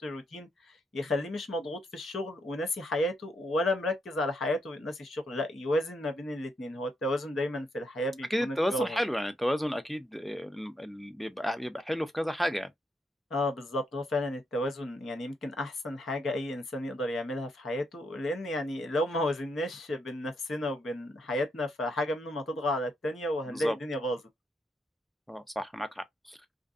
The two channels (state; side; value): normal; both; correlation 0.78